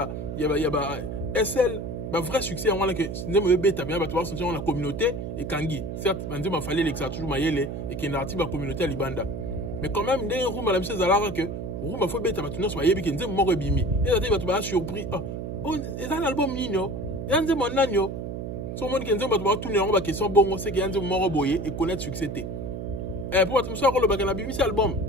il y a SL, le vrai succès, on a la communauté et Kangi. Certes, il fallait que ça toujours maillé et qu'il y ait une communauté à Libanda. Mais quand même, il y a un room à la mise à que room a fait bête à tourner sur Mayebi qui est mort bimi. Et là, il va surpris. Oh, c'est un album nino. Il y a un mon agneau. Son monde qui est va tourner en bas question bon, c'est qu'il y a un mort boyé et connaître succès. Et pour être sûr, le bagage bimi c'est album.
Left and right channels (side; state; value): right; noise; hum, 6 dB below the sound